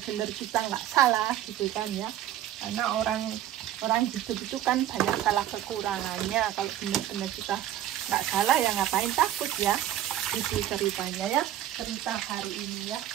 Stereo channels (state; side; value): quieter; left; 12.0 dB